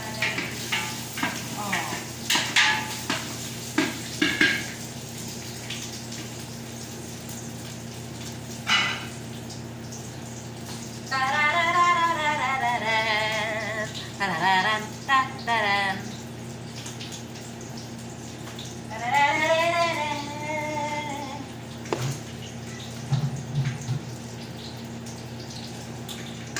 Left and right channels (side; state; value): both; identical; correlation 1.00